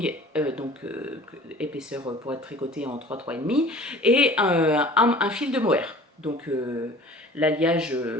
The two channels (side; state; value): both; normal; correlation 0.45